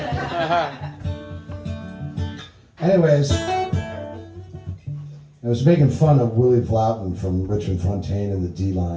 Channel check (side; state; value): both; identical; correlation 1.00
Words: Anyways, I was making fun of Willie Vloughton from Richmond Fontaine and the